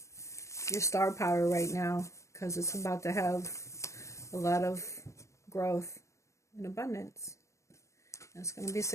your star power right now, because it's about to have a lot of growth and abundance. And it's going to be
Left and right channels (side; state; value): right; late; 0.14 ms